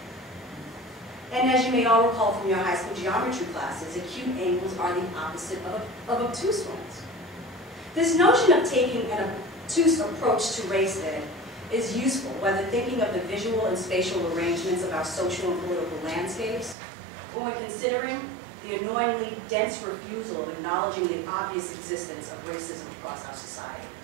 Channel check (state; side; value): drops out; left; at 16.8 s